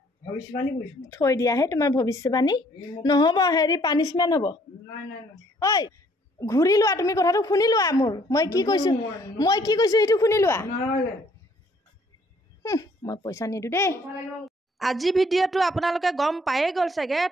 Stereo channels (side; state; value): both; normal; correlation 0.62